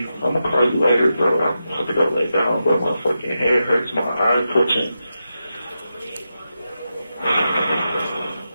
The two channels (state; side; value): inverted; both; correlation -0.89